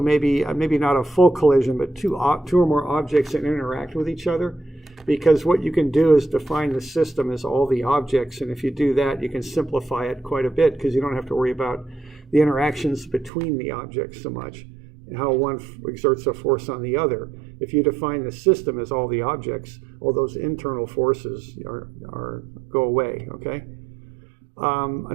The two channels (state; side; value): drops out; left; at 13.3 s